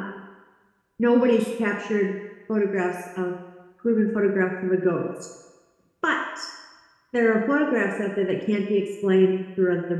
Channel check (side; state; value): both; identical; correlation 1.00